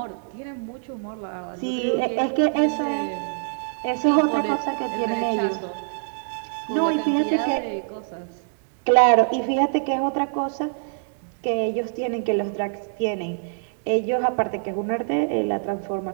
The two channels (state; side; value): silent; left; digital silence